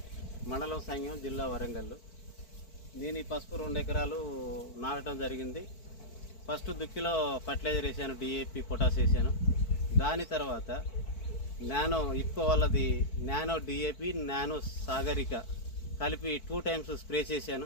మండలం సంఘం, జిల్లా వరంగల్. నేను ఈ పసుపు 2 ఎకరాలు నాటడం జరిగింది. ఫస్ట్ దుక్కిలో ఫర్టిలైజర్ వేసాను, డిఏపి, పొటాస్ వేసాను. దాని తర్వాత నానో ఇఫ్కో వాళ్ళది నానో డిఏపి, నానో సాగరిక కలిపి 2 టైమ్స్ స్ప్రే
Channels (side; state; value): right; late; 4.5 ms